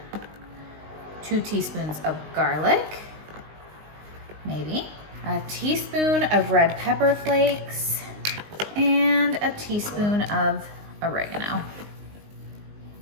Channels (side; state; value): left; late; 19 ms